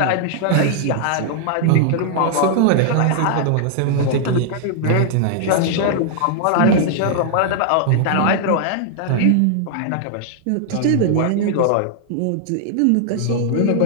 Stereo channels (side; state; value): both; different; correlation -0.01